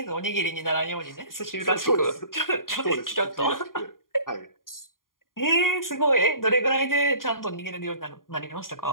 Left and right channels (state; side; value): late; right; 0.91 ms